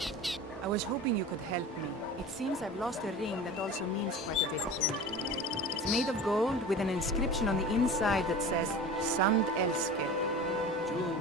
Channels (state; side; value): normal; both; correlation 0.35